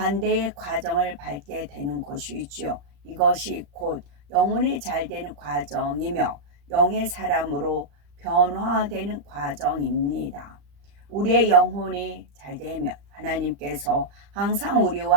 과정을 밟게 되는 것이지요. 이것이 곧 영혼이 잘 되는 과정이며 영의 사람으로 변화되는 과정입니다. 우리의 영혼이 잘 되면 하나님께서 항상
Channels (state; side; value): late; left; 35 ms